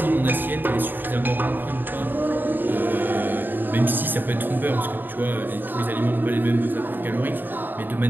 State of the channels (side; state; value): left; late; 0.092 ms